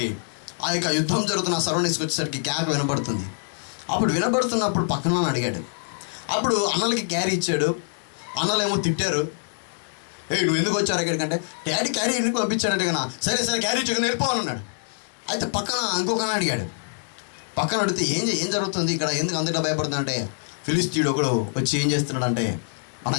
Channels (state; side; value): silent; right; digital silence